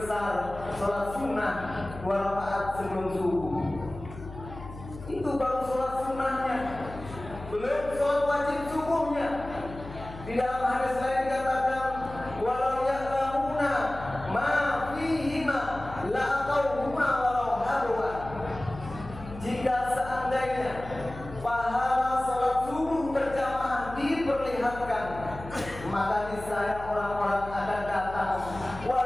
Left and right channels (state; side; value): noise; left; hum, 13 dB below the sound